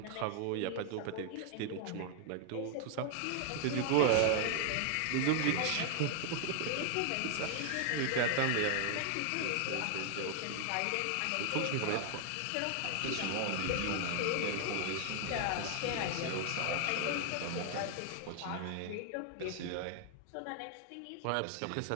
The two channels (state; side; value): different; both; correlation 0.00